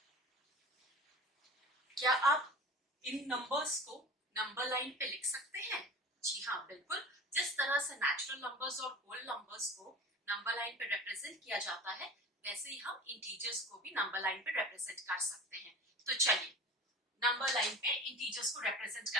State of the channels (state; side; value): normal; both; correlation 0.38